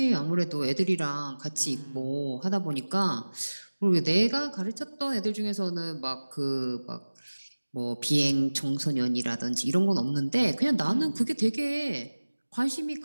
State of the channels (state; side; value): inverted; both; correlation -1.00